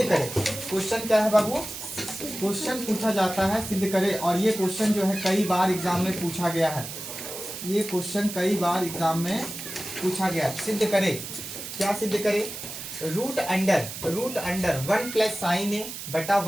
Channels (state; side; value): noise; right; hiss, 9 dB below the sound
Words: करें। क्वेश्चन क्या है बाबू? क्वेश्चन पूछा जाता है सिद्ध करें। और ये क्वेश्चन जो है कई बार एग्जाम में पूछा गया है। ये क्वेश्चन कई बार एग्जाम में पूछा गया है। सिद्ध करें, क्या सिद्ध करें? रूट अंडर 1 प्लस साइन ए बटा